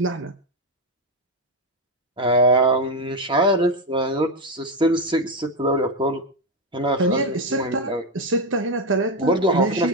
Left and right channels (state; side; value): normal; both; correlation 0.08